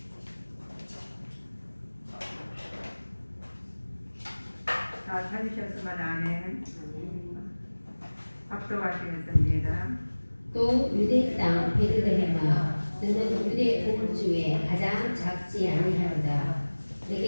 다 찾으셨으면 아멘. 합독하시겠습니다. 또 유대 땅 베들레헴아, 너는 유대 온 중에 가장 작지 아니하로다.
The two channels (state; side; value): inverted; both; correlation -1.00